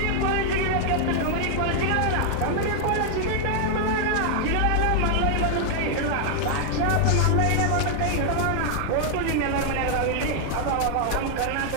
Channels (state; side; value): different; both; correlation 0.00